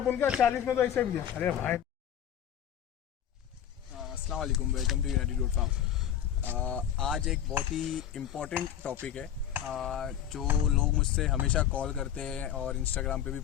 क्या? 40 में तो ऐसे भी। अरे भाई अस्सलाम वालेकुम, welcome to United Goat Farm. आज एक बहुत ही इम्पोर्टेंट टॉपिक है जो लोग मुझसे हमेशा कॉल करते हैं और इंस्टाग्राम पे भी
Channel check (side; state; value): right; quieter; 9.9 dB